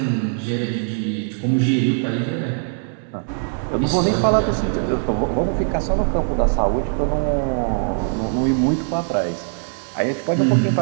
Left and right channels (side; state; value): left; silent; 65 dB below the other